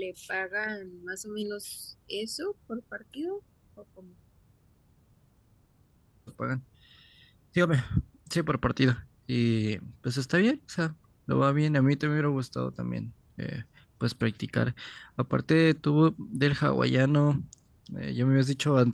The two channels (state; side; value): identical; both; correlation 1.00